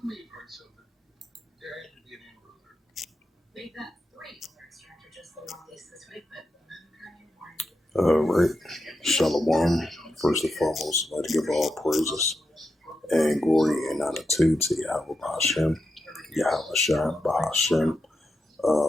Shalom. First and foremost, I'd like to give all praises and glory and honor to Yahweh Bahashem, Yahweh Shai Bahashem,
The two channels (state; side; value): normal; both; correlation 0.87